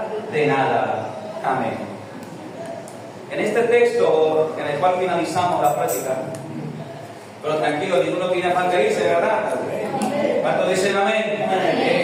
de nada. Amén. En este texto, en el cual finalizamos la práctica, pero tranquilo, ninguno tiene afán de irse, ¿verdad? ¿Cuántos dicen amén?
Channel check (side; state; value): both; identical; correlation 1.00